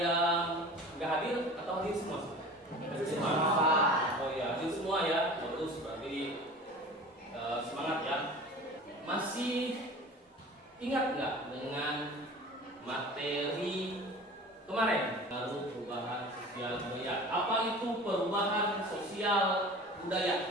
yang nggak hadir atau hadir semua? Hadir semua. Oh ya, hadir semua ya. Terus berarti semangat ya. Masih ingat nggak dengan materi kemarin? Baru perubahan sosial budaya. Apa itu perubahan sosial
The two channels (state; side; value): normal; both; correlation 0.40